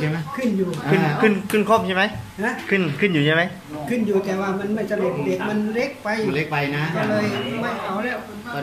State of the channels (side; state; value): both; identical; correlation 1.00